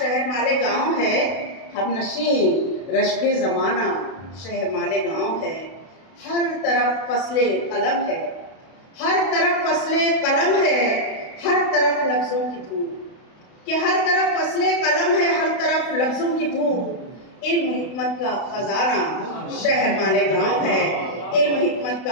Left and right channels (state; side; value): late; right; 32 ms